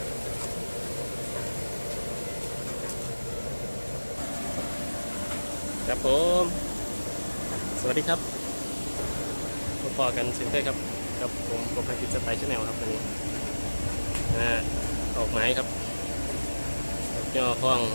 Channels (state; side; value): inverted; both; correlation -1.00